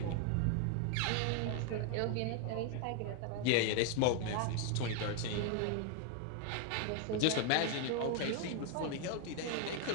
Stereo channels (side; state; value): both; different; correlation 0.01